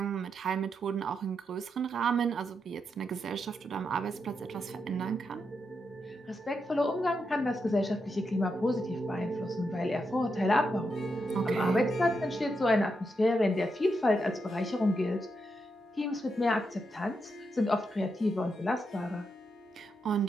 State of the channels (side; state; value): both; normal; correlation 0.84